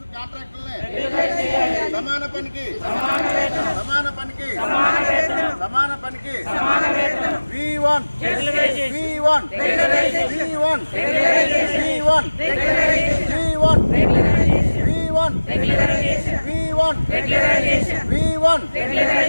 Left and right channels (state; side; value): inverted; both; correlation -1.00